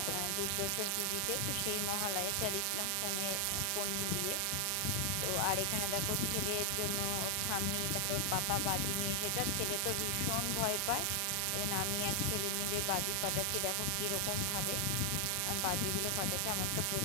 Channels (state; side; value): different; both; correlation 0.00